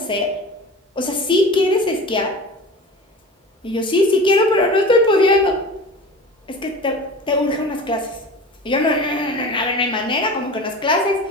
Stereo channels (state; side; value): normal; both; correlation 0.35